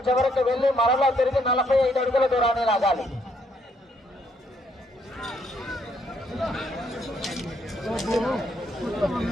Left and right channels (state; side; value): normal; both; correlation 0.71